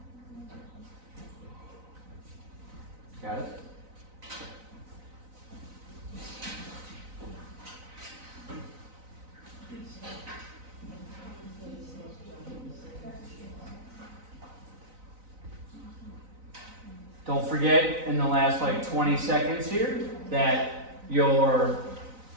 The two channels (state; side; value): late; left; 4.0 ms